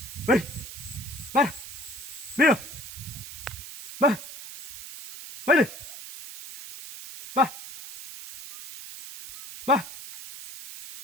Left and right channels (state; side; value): noise; right; hiss, 10 dB below the sound